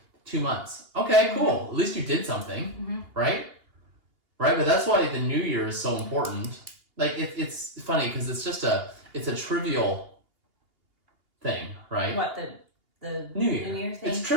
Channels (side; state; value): left; late; 2.8 ms